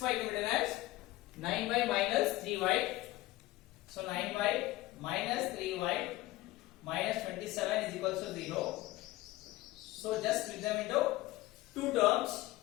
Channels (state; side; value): quieter; right; 17.9 dB